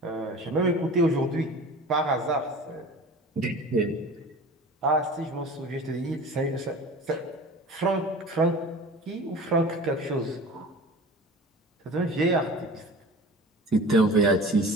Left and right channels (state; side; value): normal; both; correlation 0.38